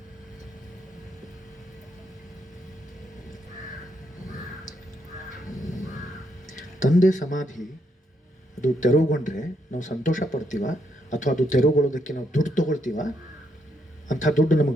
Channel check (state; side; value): normal; both; correlation 0.76